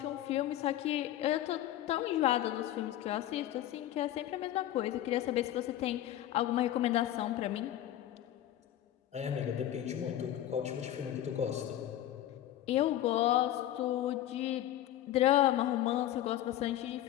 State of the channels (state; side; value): quieter; right; 12.8 dB